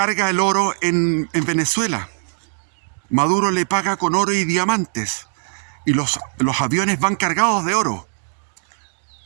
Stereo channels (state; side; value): silent; left; digital silence